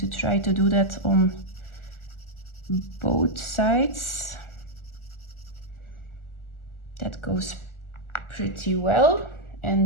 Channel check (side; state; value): right; late; 1.4 ms